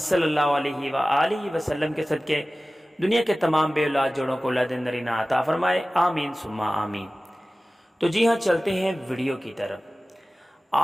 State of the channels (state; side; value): normal; both; correlation 0.97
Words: صلی اللہ علیہ وآلہ وسلم کے صدقے دنیا کے تمام بے اولاد جوڑوں کو اولاد نرینہ عطا فرمائے، آمین ثم آمین۔ تو جی ہاں، چلتے ہیں ویڈیو کی طرف۔